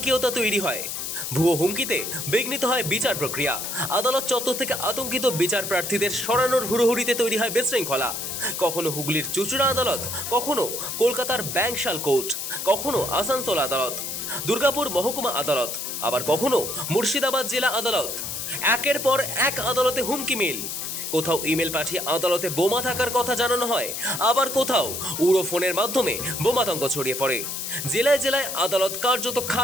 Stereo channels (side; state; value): left; noise; hiss, 5 dB below the sound